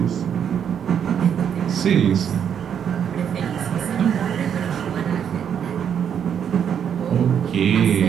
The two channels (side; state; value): left; quieter; 8.3 dB